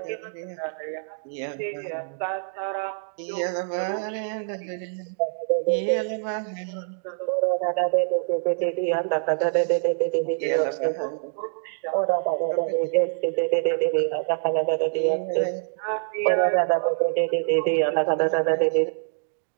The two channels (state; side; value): silent; left; digital silence